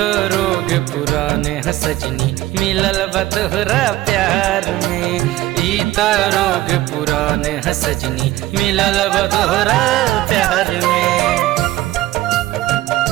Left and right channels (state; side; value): quieter; left; 16.2 dB